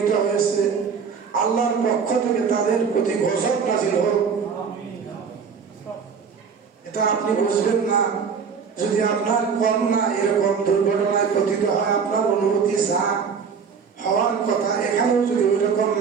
হয়েছে, আল্লাহর পক্ষ থেকে তাদের প্রতি গজব নাযিল হোক। এটা আপনি বুঝবেন না যদি আপনার কন্যা এরকম দুর্ঘটনায় পতিত হয়। আপনার অনুমতি যা হওয়ার কথা, এখানেও যদি ওই রকম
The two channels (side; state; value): left; quieter; 6.1 dB